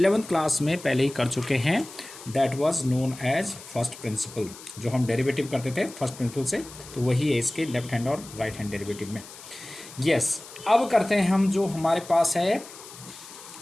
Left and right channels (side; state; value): left; noise; hiss, 16 dB below the sound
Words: class में पहले ही कर चुके हैं। That was known as first principle. जो हम डेरिवेटिव करते थे फर्स्ट प्रिंसिपल से, तो वही है इसके लेफ्ट हैंड और राइट हैंड डेरिवेटिव में। यस, अब करते हैं हम जो हमारे पास है